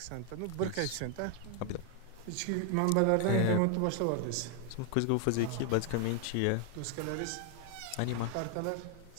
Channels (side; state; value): both; different; correlation 0.00